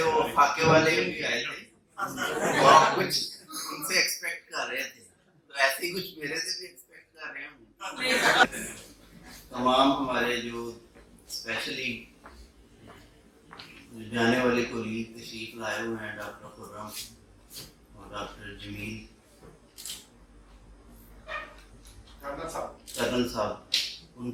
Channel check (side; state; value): both; identical; correlation 1.00